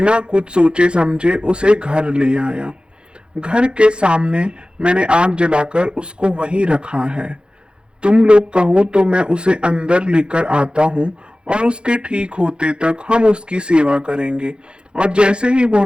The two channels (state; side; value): late; left; 0.053 ms